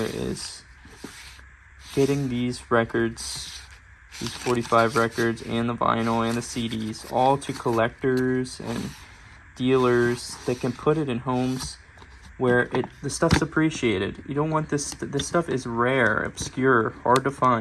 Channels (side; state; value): both; identical; correlation 1.00